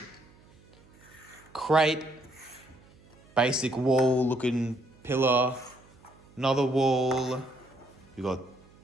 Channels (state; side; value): noise; right; hum, 27 dB below the sound